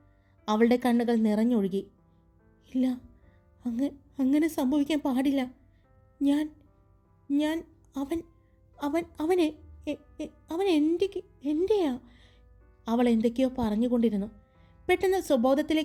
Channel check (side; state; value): both; identical; correlation 1.00